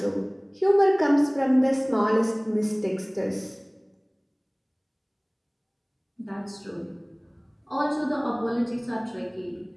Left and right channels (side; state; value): both; identical; correlation 1.00